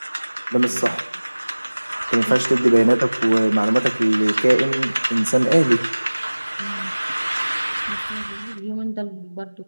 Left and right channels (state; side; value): inverted; both; correlation -1.00